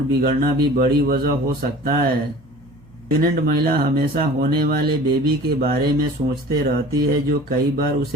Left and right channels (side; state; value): both; normal; correlation 0.43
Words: बिगड़ना भी बड़ी वजह हो सकता है। प्रेग्नेंट महिला हमेशा होने वाले बेबी के बारे में सोचते रहती है, जो कई बार